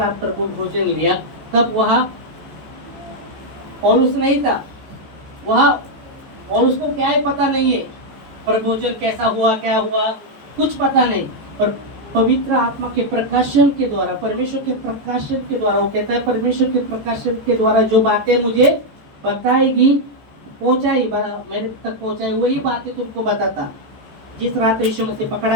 प्रभु भोजन लिया तब वहाँ पौलुस नहीं था, वहाँ पौलुस को क्या है पता नहीं है, प्रभु भोजन कैसा हुआ क्या हुआ कुछ पता नहीं। पर पवित्र आत्मा के प्रकाशन के द्वारा, परमेश्वर के प्रकाशन के द्वारा, वो कहता है परमेश्वर के प्रकाशन के द्वारा जो बातें मुझे बताएगी, पहुंचाई, मेरे तक पहुंचाई, वही बातें तुमको बताता। जिस रात यीशु मसीह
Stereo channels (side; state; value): left; late; 14 ms